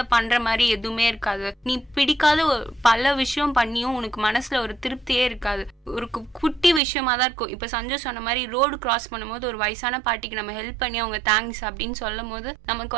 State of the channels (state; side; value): drops out; left; at 6.8 s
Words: பண்ற மாதிரி எதுவுமே இருக்காது. நீ பிடிக்காத பல விஷயம் பண்ணியும் உனக்கு மனசுல ஒரு திருப்தியே இருக்காது. ஒரு குட்டி விஷயமா தான் இருக்கும். இப்ப சஞ்சய் சொன்ன மாதிரி ரோடு கிராஸ் பண்ணும்போது ஒரு வயசான பாட்டிக்கு நம்ம ஹெல்ப் பண்ணி அவங்க தேங்க்ஸ் அப்படின்னு சொல்லும் போது நமக்கு